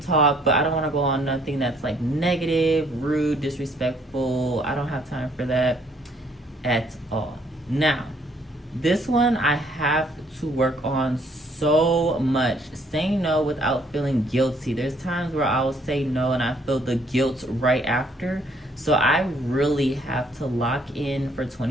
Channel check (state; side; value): normal; both; correlation 0.65